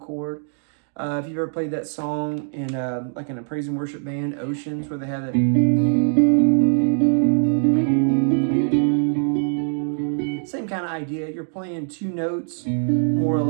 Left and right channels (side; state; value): left; silent; digital silence